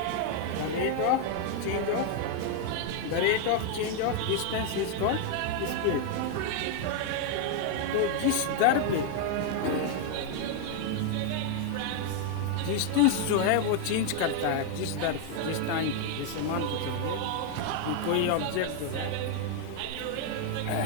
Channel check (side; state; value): both; different; correlation 0.00